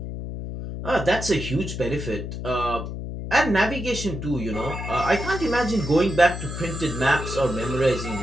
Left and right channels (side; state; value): left; noise; hum, 7 dB below the sound